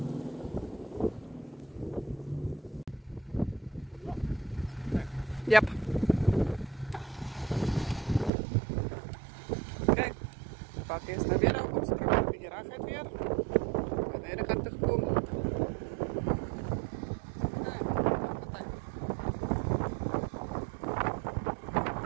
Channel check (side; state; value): left; drops out; at 8.3 s